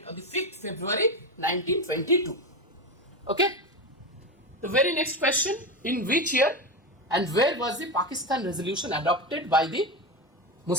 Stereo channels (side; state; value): both; normal; correlation 0.17